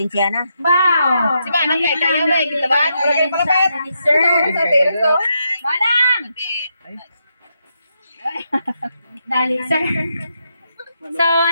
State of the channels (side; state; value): both; inverted; correlation -0.81